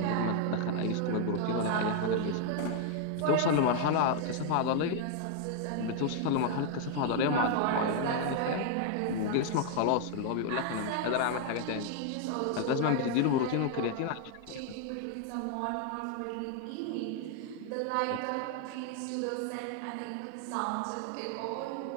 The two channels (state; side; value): different; both; correlation 0.00